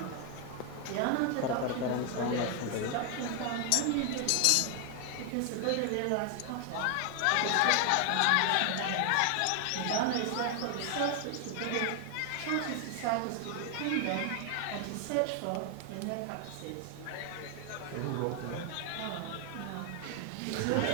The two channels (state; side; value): different; both; correlation 0.00